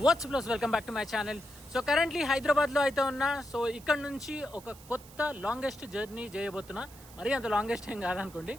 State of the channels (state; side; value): noise; right; hiss, 21 dB below the sound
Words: వాట్స్ ప్లస్ welcome back to my channel. So currently హైదరాబాద్లో అయితే ఉన్నా. సో ఇక్కడ నుంచి ఒక కొత్త లాంగెస్ట్ జర్నీ చేయబోతున్నా. మరీ అంత లాంగెస్ట్ ఏం కాదనుకోండి.